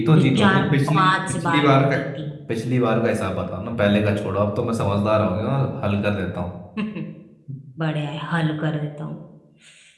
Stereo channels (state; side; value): identical; both; correlation 1.00